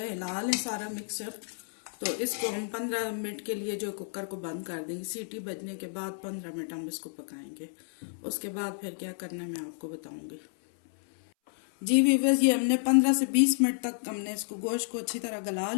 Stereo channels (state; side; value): silent; right; 57 dB below the other